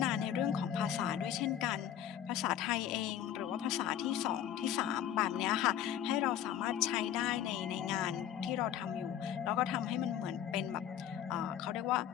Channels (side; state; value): right; quieter; 10.3 dB